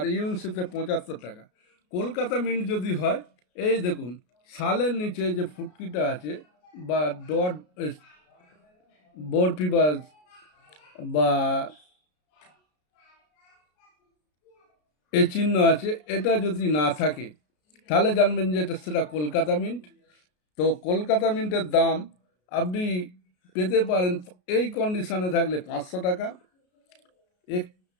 ইউএনসিতে 75 টাকা। কলকাতা মিন্ট যদি হয়, এই দেখুন সালের নিচে যে ফুটকিটা আছে বা ডট বরফি বা এ চিহ্ন আছে, এটা যদি না থাকে তাহলে জানবেন যে সেটা কলকাতা মিন্ট। তো কলকাতা মিন্টের দাম আপনি পেতে পারেন এই কন্ডিশনে থাকলে 500 টাকা,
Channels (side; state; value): right; late; 33 ms